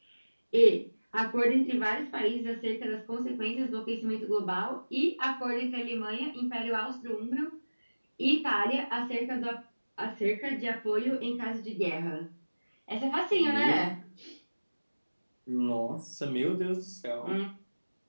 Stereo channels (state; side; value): inverted; both; correlation -1.00